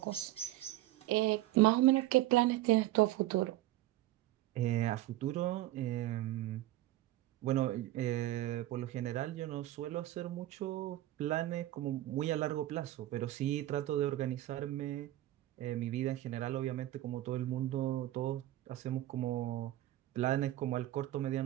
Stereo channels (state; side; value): quieter; left; 15.2 dB